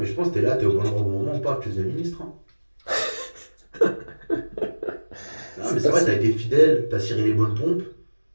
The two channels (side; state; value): both; inverted; correlation -1.00